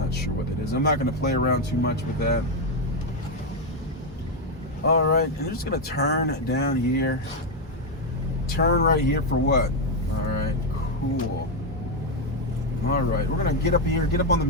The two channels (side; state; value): both; normal; correlation 0.05